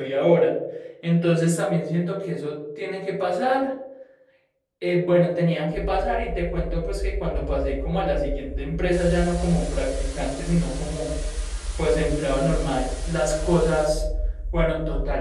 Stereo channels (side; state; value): both; identical; correlation 1.00